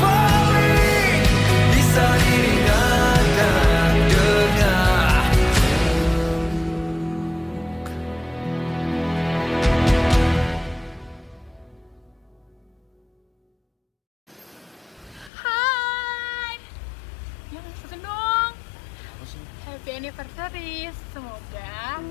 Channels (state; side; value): drops out; right; at 15.3 s